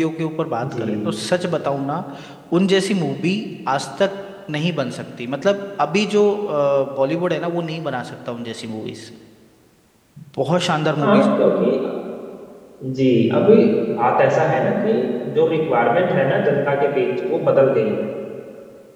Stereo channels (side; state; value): both; identical; correlation 1.00